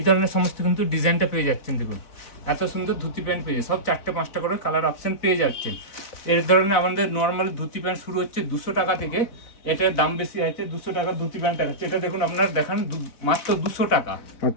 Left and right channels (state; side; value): late; right; 4.0 ms